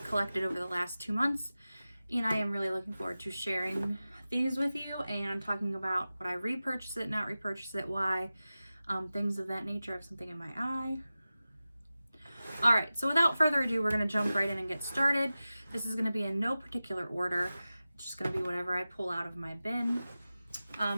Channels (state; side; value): inverted; both; correlation -0.95